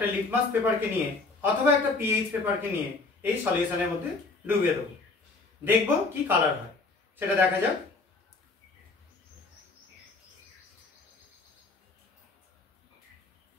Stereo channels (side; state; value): right; quieter; 3.7 dB